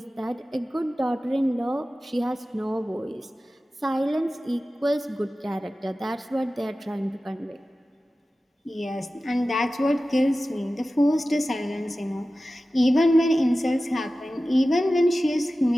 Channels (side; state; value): both; normal; correlation 0.95